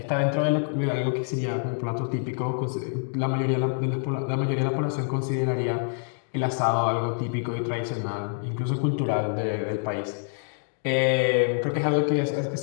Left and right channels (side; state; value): right; silent; digital silence